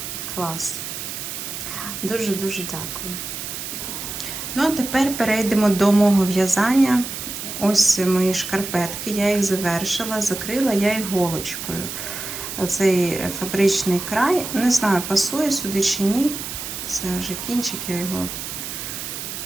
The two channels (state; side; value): noise; right; hiss, 7 dB below the sound